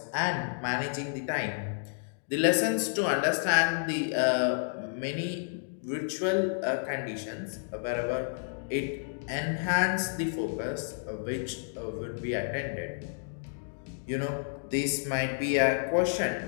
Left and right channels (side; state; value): right; silent; digital silence